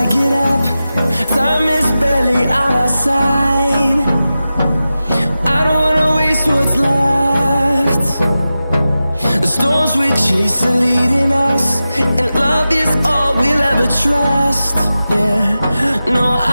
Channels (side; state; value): both; inverted; correlation -0.93